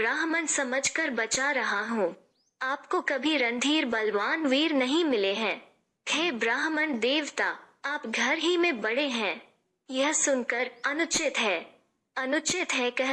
समझकर बचा रहा हूँ। आपको कभी रणधीर बलवान वीर नहीं मिले हैं। हे ब्राह्मण देवता, आप घर ही में बड़े हैं। यह सुनकर अनुचित है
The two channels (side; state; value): both; identical; correlation 1.00